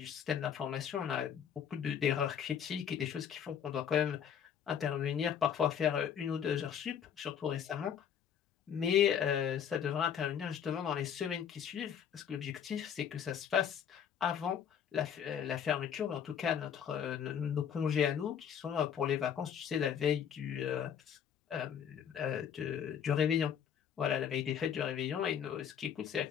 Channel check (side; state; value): right; quieter; 8.3 dB